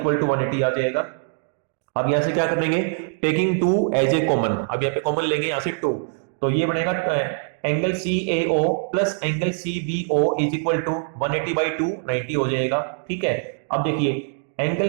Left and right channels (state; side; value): silent; left; digital silence